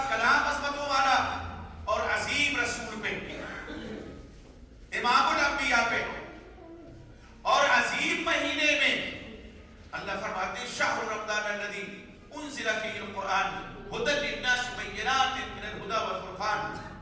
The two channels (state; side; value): identical; both; correlation 1.00